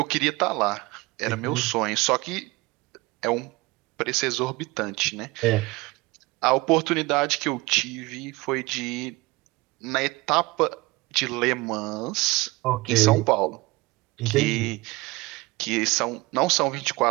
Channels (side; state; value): left; quieter; 22.4 dB